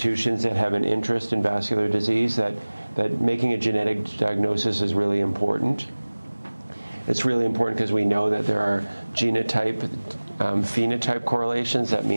that have an interest in vascular disease, that making a genetic diagnosis is really important. It's really important because we know that there are genotype, phenotype correlations. That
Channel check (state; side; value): inverted; both; correlation -1.00